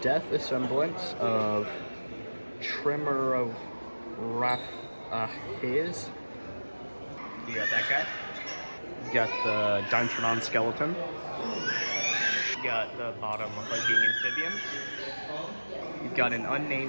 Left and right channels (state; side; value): inverted; both; correlation -1.00